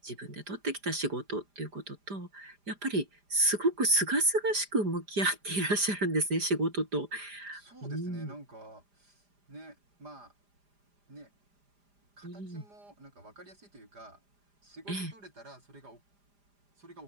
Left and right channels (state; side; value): late; left; 5.0 ms